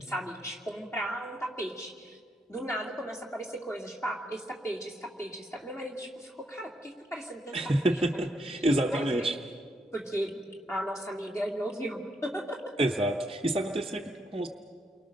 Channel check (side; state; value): both; normal; correlation 0.77